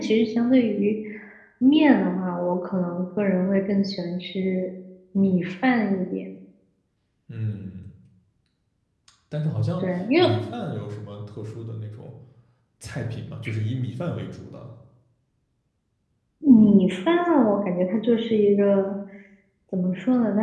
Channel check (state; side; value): identical; both; correlation 1.00